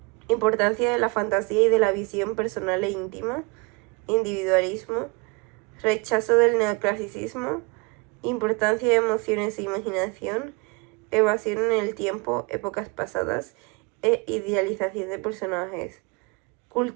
importancia de la fantasía y de la visión personal e íntima, individualismo, rechazo del neoclasicismo, importancia de emociones e imaginación, evasión en el tiempo, épocas pasadas e idealización de personajes,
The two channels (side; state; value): left; quieter; 28.4 dB